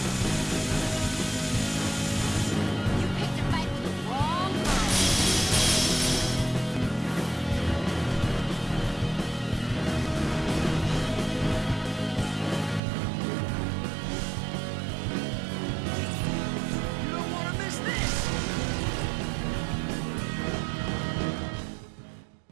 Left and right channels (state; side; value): drops out; left; at 12.8 s